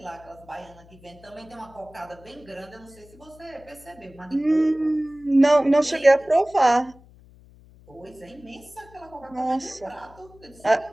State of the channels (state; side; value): noise; left; hum, 24 dB below the sound